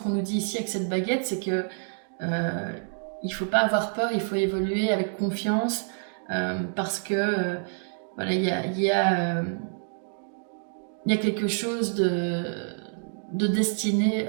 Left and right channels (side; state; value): left; silent; 58 dB below the other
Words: nous dit ici avec cette baguette, c'est que il faut pas avoir peur, il faut évoluer avec confiance parce que voilà, il y a quelque chose de destiné